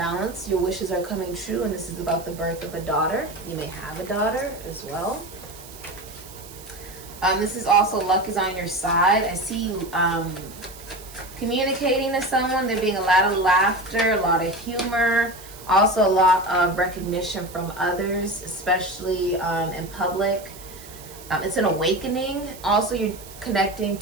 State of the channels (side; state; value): right; noise; hiss, 18 dB below the sound